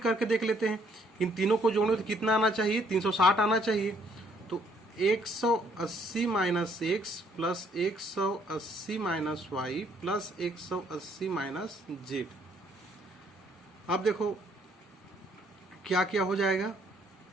देख लेते हैं। इन तीनों को जोड़ने तो कितना आना चाहिए? 360 आना चाहिए। तो 180 minus x plus 180 minus y plus 180 minus z. अब देखो क्या क्या हो जाएगा,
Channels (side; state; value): both; normal; correlation 0.66